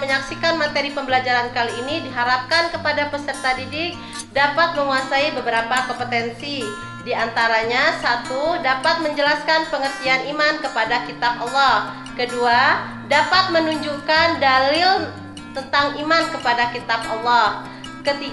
menyaksikan materi pembelajaran kali ini, diharapkan kepada peserta didik dapat menguasai beberapa kompetensi. Di antaranya, 1. Dapat menjelaskan pengertian iman kepada kitab Allah. Kedua, dapat menunjukkan dalil tentang iman kepada kitab Allah.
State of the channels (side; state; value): both; identical; correlation 1.00